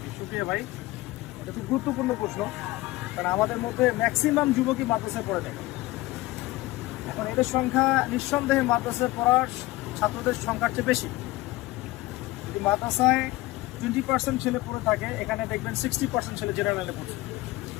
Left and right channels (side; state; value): right; quieter; 19.1 dB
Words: শুক্রিয়া ভাই, এটা খুব গুরুত্বপূর্ণ প্রশ্ন, কারণ আমাদের মধ্যে ম্যাক্সিমাম যুবকই মাদ্রাসায় পড়ে থাকে। এখন এদের সংখ্যা নিঃসন্দেহে মাদ্রাসায় পড়ার ছাত্রদের সংখ্যার চেয়ে বেশি। যদি মাদ্রাসায় 20% ছেলে পড়ে থাকে, এখানে দেখবেন 60% ছেলে জেনারেলে পড়ছে।